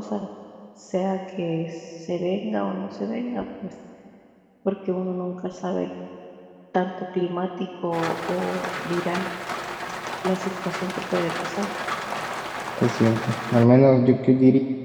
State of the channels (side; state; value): both; identical; correlation 1.00